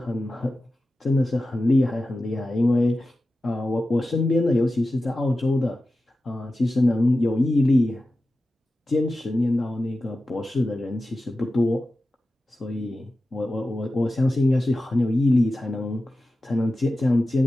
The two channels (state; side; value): normal; both; correlation 0.94